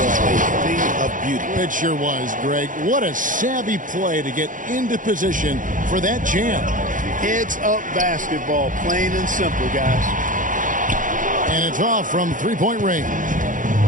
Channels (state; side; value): late; left; 0.38 ms